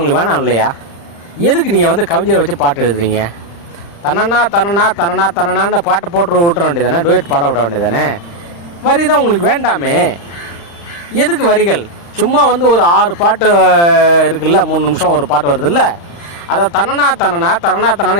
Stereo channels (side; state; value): right; late; 35 ms